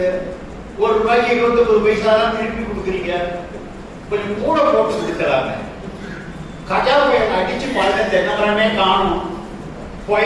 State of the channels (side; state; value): both; identical; correlation 1.00